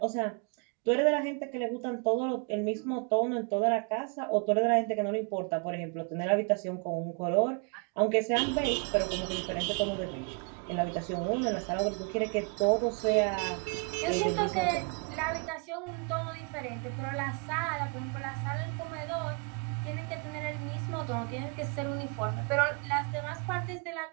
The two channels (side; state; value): left; quieter; 36.0 dB